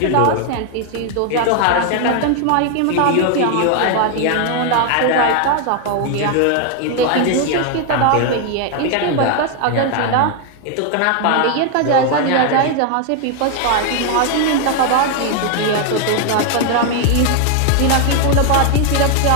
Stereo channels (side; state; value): both; different; correlation 0.01